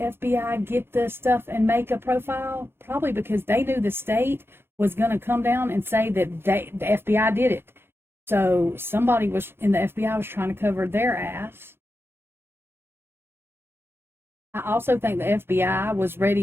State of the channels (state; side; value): late; left; 0.11 ms